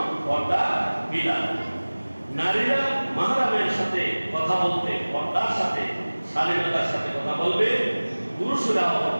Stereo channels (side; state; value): both; inverted; correlation -1.00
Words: পর্দার বিধান। নারীরা মাহরামের সাথে কথা বলতে পর্দার সাথে শালীনতার সাথে কথা বলবে। পুরুষরাও